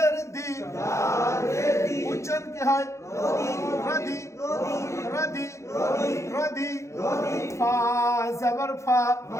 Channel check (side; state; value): right; late; 0.14 ms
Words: দি উচ্চারণ কি হয় রদি রদি রদি ফা জাবার ফা